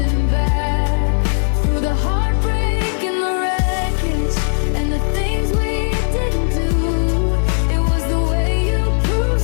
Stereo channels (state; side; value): silent; right; 56 dB below the other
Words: back. Through the heartbreak and the wreckage and the things we didn't do, it was the way you